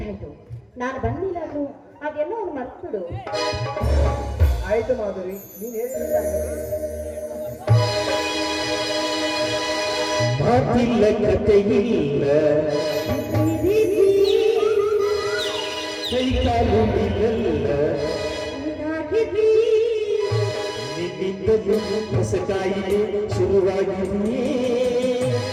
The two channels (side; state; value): both; identical; correlation 1.00